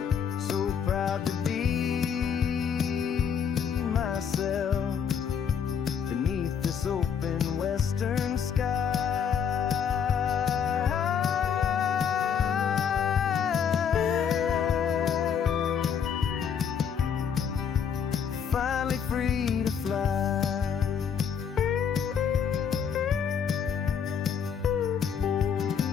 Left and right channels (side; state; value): right; quieter; 7.4 dB